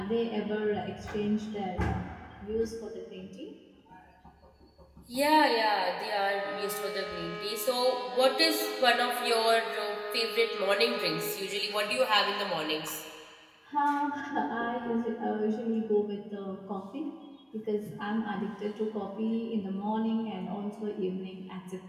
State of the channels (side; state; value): both; identical; correlation 1.00